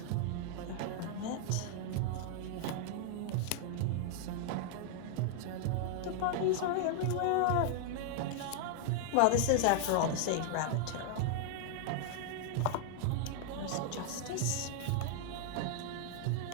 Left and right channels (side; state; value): both; different; correlation 0.00